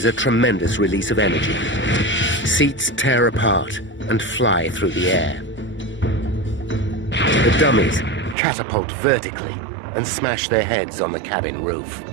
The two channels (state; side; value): drops out; left; at 8.3 s